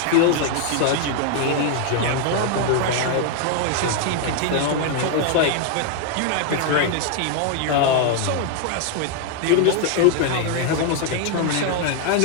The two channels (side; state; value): both; different; correlation 0.00